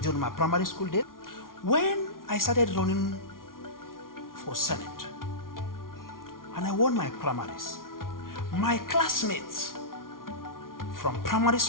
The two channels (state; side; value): late; right; 0.91 ms